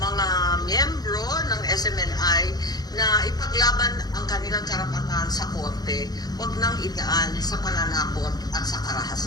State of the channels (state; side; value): late; right; 0.19 ms